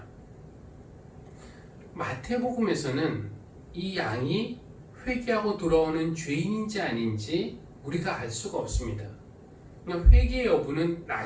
마태복음에서는 이 양이 회개하고 돌아오는 죄인인지 아닌지 우리가 알 수가 없습니다. 회개 여부는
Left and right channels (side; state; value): both; identical; correlation 1.00